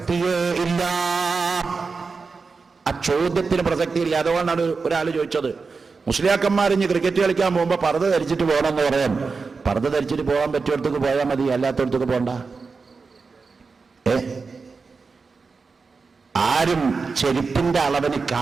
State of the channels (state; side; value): quieter; left; 4.6 dB